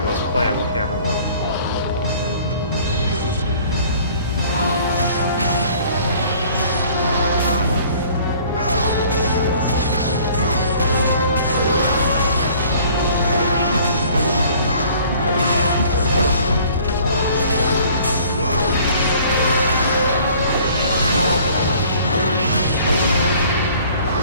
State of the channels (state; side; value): inverted; both; correlation -0.53